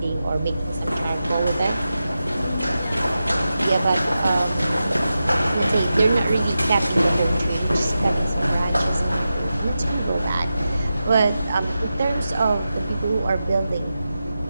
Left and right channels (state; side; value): inverted; both; correlation -0.91